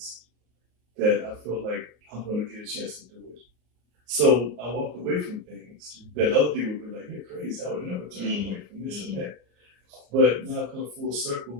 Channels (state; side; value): late; left; 33 ms